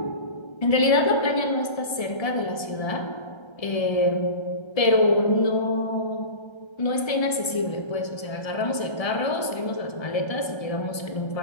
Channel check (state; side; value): late; right; 1.7 ms